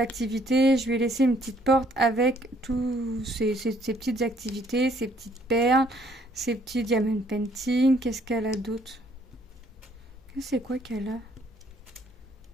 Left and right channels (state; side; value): normal; both; correlation 0.64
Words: je lui ai laissé une petite porte avec tous ces petites activités, ces petites perles, ces petits diamond painting. Qu'est-ce qu'elle a d'autre? C'est quoi qu'elle